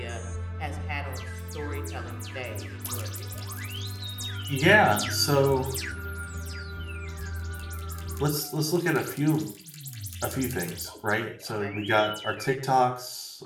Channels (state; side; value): identical; both; correlation 1.00